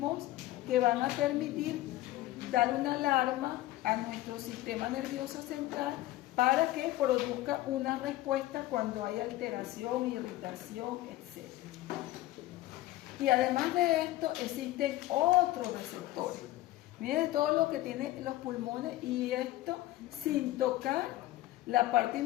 que van a permitir dar una alarma a nuestro sistema nervioso central para que produzca una respuesta cuando hay alteración, irritación, etc. Y además de esto existen otros receptores. Miren todo lo que tienen los pulmones, y esto sin tocar la parte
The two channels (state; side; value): quieter; right; 16.1 dB